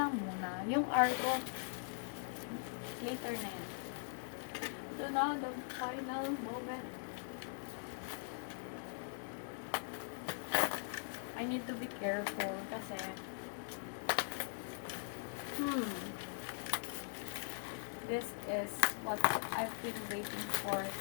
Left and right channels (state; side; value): silent; right; digital silence